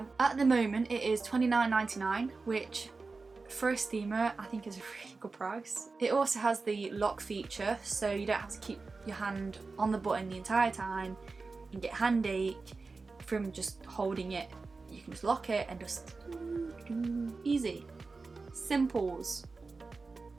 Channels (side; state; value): left; quieter; 4.0 dB